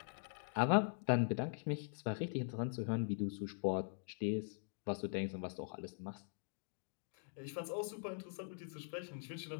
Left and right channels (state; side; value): silent; right; digital silence